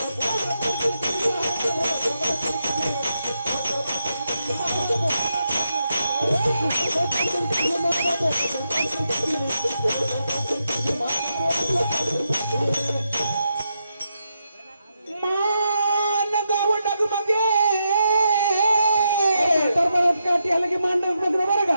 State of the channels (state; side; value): inverted; both; correlation -0.83